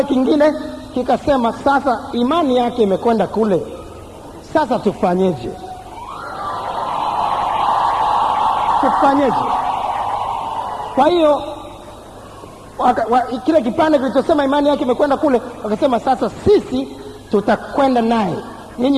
kingine kikasema, sasa imani yake imekwenda kule, sasa tufanyeje? Kwa hiyo kile kipande kilichosema imani yake imekwenda kule, wakasema, sasa sisi tutakwenda naye,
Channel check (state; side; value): identical; both; correlation 1.00